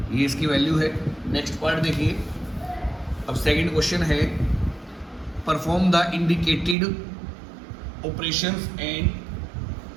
ये इसकी वैल्यू है। नेक्स्ट पार्ट देखिए, अब सेकंड क्वेश्चन है perform the indicated operations and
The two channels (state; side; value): drops out; left; at 6.8 s